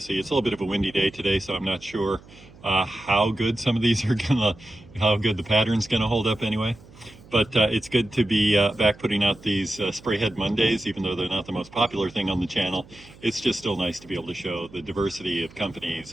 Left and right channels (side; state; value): right; noise; hum, 22 dB below the sound